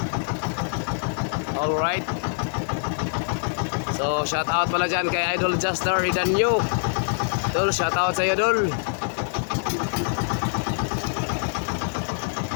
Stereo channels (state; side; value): silent; right; 62 dB below the other